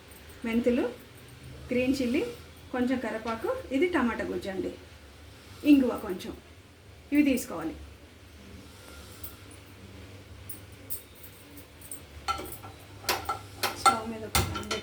మెంతులు, గ్రీన్ చిల్లీ, కొంచెం కరివేపాకు, ఇది టమాటా గుజ్జు అండి, ఇంగువ కొంచెం. ఇవి తీసుకోవాలి. స్టవ్ మీద ఒక ప్యాన్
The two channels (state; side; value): identical; both; correlation 1.00